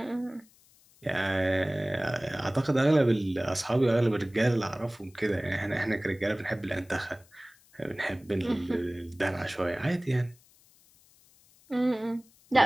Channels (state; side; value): noise; left; hiss, 29 dB below the sound